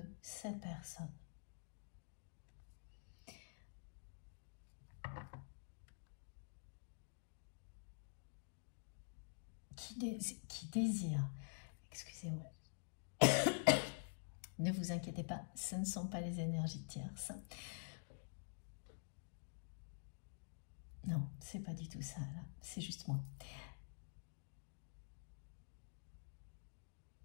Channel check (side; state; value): right; silent; digital silence